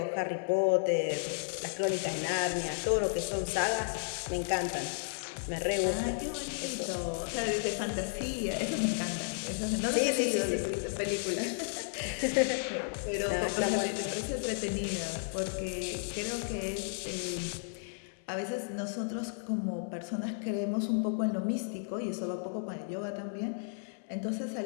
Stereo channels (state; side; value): silent; right; 56 dB below the other